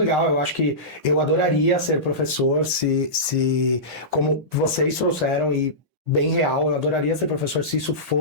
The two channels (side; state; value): both; normal; correlation -0.19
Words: Eu acho que eu adoraria ser professor se como vocês trouxeram, e bem real, eu adoraria ser professor se isso